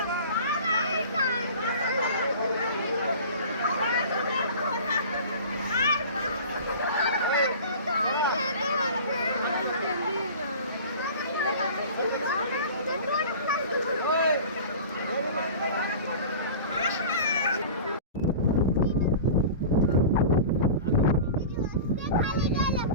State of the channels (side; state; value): both; inverted; correlation -0.38